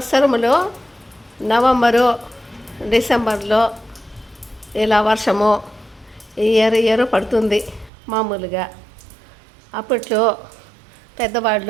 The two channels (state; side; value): drops out; left; at 7.9 s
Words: నవంబరు డిసెంబర్లో ఇలా వర్షము ఇయర్ పడుతుంది మామూలుగా. అప్పట్లో